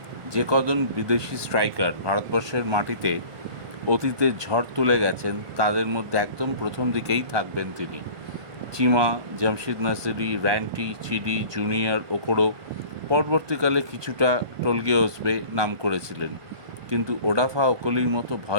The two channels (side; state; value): left; late; 1.5 ms